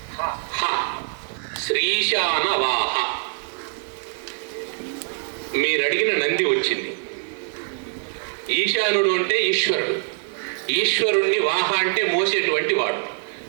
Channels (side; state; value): left; silent; 61 dB below the other